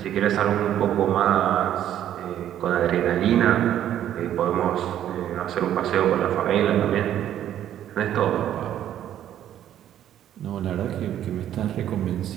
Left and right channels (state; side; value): quieter; left; 11.1 dB